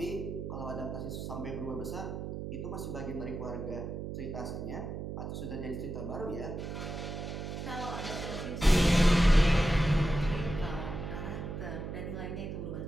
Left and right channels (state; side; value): noise; right; hum, 6 dB below the sound